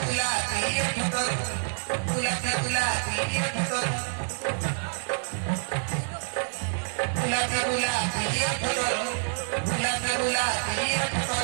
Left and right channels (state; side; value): silent; left; 60 dB below the other